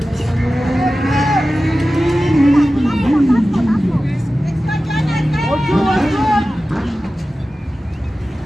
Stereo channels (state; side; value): normal; both; correlation 0.95